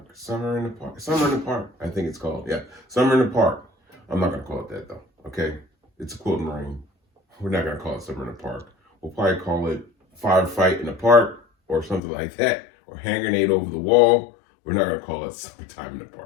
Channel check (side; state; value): right; drops out; at 12.0 s